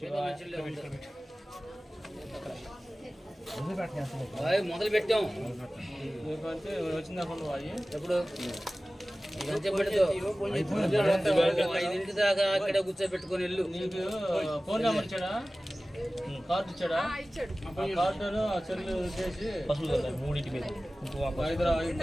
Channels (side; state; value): both; normal; correlation 0.97